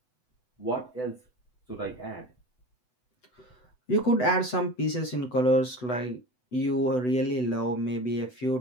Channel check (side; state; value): right; late; 8.0 ms